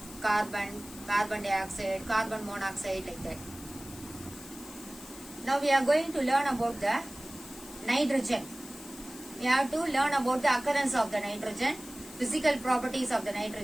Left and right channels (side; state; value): left; noise; hiss, 16 dB below the sound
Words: carbon dioxide, carbon monoxide, like that. Now we are going to learn about the nitrogen. We have to learn about the occurrence of the nitrogen, physical properties of the